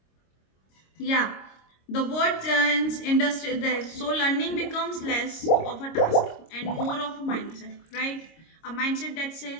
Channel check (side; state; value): right; late; 26 ms